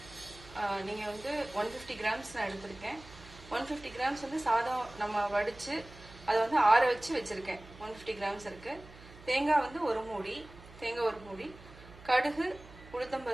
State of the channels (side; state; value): right; noise; hum, 19 dB below the sound